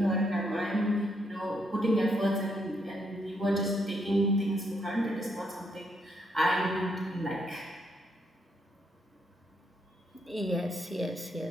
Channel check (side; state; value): both; normal; correlation 0.75